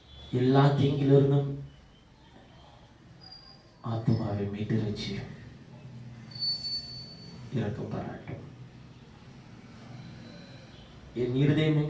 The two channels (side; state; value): both; identical; correlation 1.00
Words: எல்லா தீங்கிலிருந்தும் ஆத்மாவை மீட்டெழுச்சி இரக்கம் பாராட்டும். என் இருதயம்